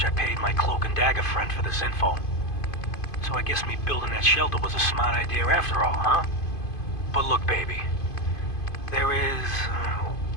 I paid my cloak and dagger friend for this info. So I guess me building that shelter was a smart idea after all, huh? But look, baby. There is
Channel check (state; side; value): late; right; 2.5 ms